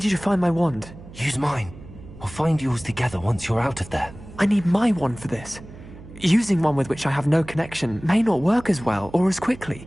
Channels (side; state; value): right; noise; hum, 17 dB below the sound